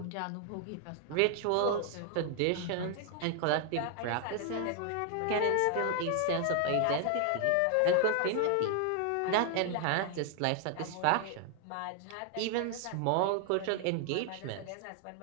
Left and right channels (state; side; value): different; both; correlation 0.00